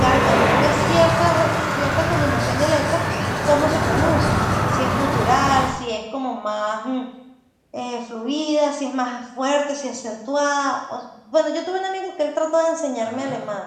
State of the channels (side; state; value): both; identical; correlation 1.00